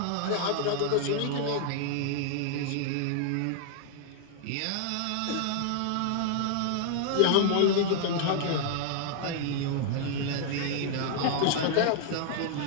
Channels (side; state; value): both; different; correlation -0.01